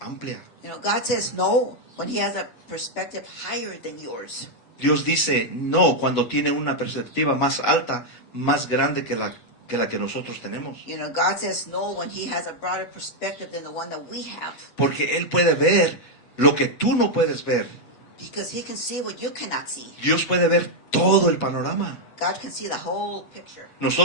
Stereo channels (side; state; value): right; late; 8.2 ms